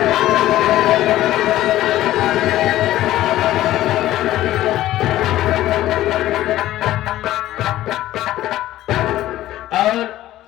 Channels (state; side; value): quieter; right; 14.6 dB